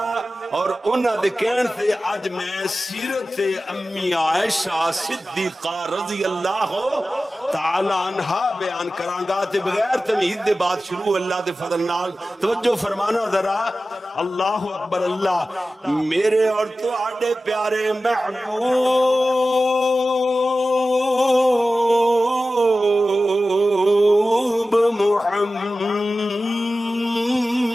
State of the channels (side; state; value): both; normal; correlation 0.95